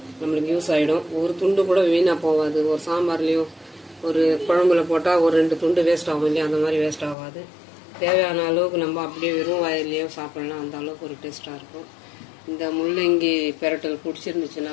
யூஸ் ஆகிடும். ஒரு துண்டு கூட வீணாக போகாது. ஒரு சாம்பார்லேயும் ஒரு குழம்புல போட்டால் ஒரு 2 துண்டு வேஸ்ட் ஆகும் இல்லையா, அந்த மாதிரி வேஸ்ட் ஆகாது. தேவையான அளவுக்கு நம்ம அப்படியே வெறும் வாயிலையோ சாப்பிடலாம். அந்த அளவுக்கு ஒரு டேஸ்ட்டாக இருக்கும். இந்த முள்ளங்கி பெரட்டல் பிடிச்சிருந்துச்சுன்னா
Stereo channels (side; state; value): right; drops out; at 7.2 s